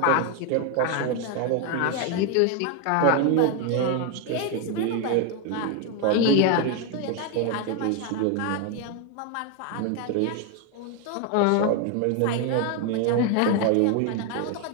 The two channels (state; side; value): different; both; correlation 0.01